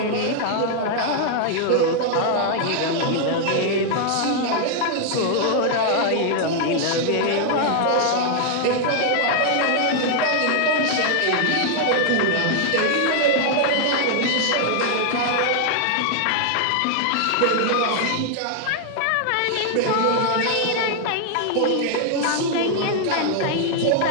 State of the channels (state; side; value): different; both; correlation 0.00